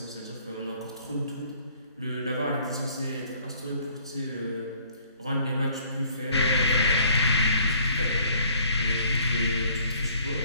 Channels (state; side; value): inverted; both; correlation -0.58